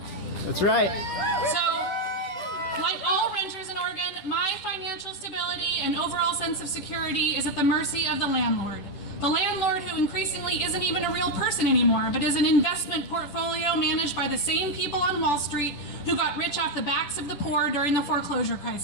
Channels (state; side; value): late; right; 10 ms